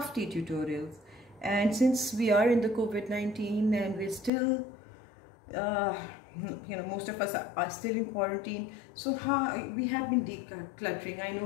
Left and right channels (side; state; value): right; drops out; at 4.3 s